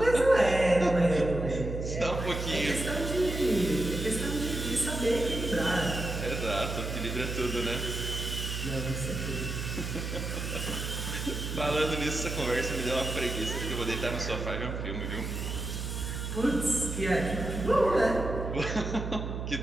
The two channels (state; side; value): noise; right; hum, 4 dB below the sound